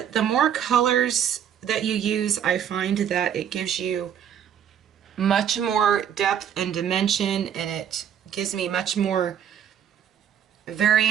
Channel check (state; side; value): quieter; left; 9.0 dB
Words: the more colors that you use, I find that it gives you much more depth and dimension, and it gives me much more